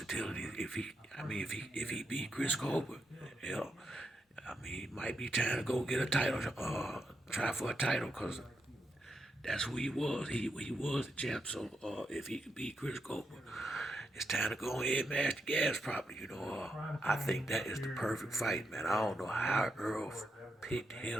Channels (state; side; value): normal; both; correlation 0.83